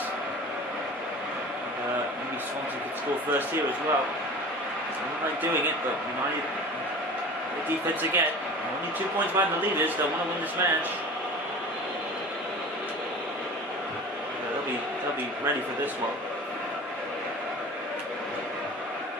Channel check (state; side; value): normal; both; correlation 0.38